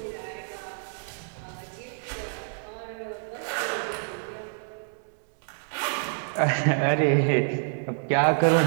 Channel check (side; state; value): left; silent; 60 dB below the other